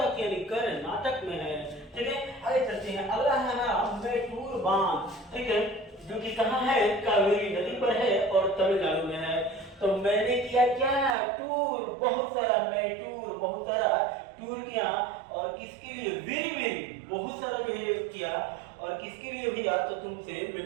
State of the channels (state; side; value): drops out; left; at 11.2 s